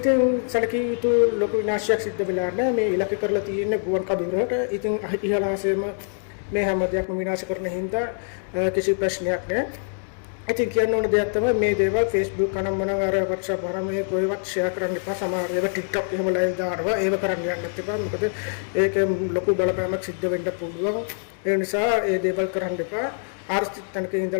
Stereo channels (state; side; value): silent; right; 57 dB below the other